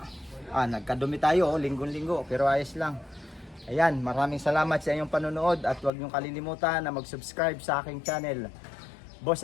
Nagkadumi tayo, linggo-linggo, pero ayos lang. Ayan, maraming salamat sa inyong panonood at huwag niyong kalilimutan na mag-subscribe sa aking channel, Boss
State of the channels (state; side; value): drops out; right; at 5.9 s